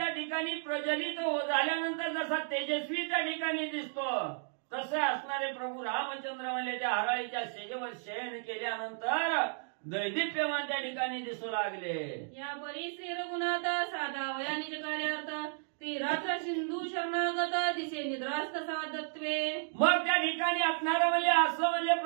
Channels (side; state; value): left; silent; digital silence